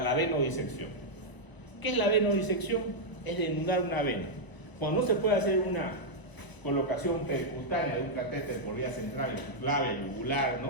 venodisección. ¿Qué es la venodisección? Es desnudar una vena. Cuando no se puede hacer una colocación percutánea de un catéter por vía central, clave, yugular,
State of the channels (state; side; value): late; right; 1.0 ms